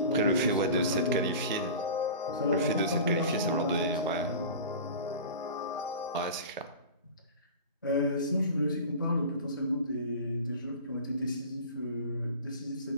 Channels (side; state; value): both; inverted; correlation -0.35